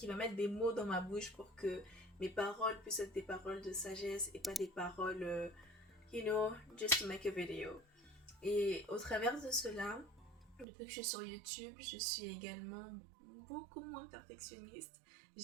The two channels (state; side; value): drops out; left; at 10.7 s